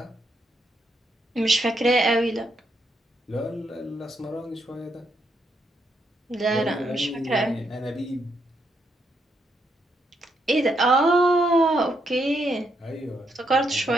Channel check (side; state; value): both; normal; correlation 0.78